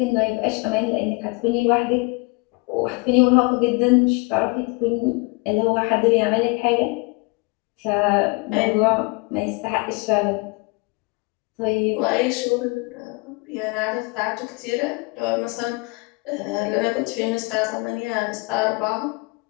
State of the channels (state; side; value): quieter; right; 28.4 dB